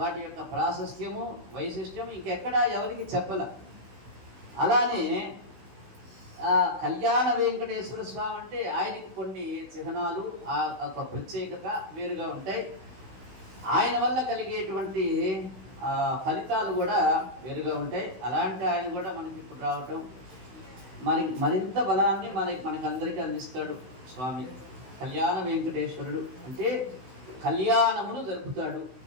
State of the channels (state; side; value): late; left; 16 ms